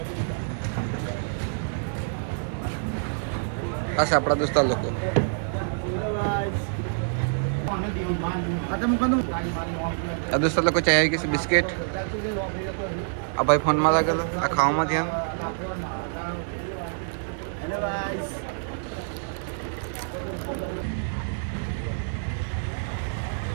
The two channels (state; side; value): silent; left; digital silence